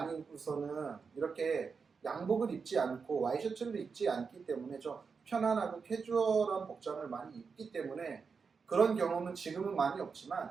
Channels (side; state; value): left; quieter; 5.4 dB